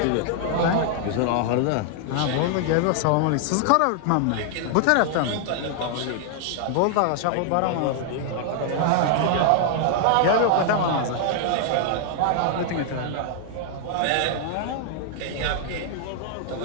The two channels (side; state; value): both; different; correlation 0.00